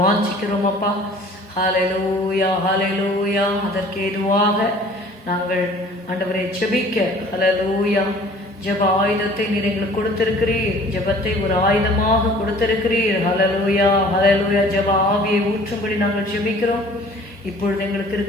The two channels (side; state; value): both; normal; correlation 0.50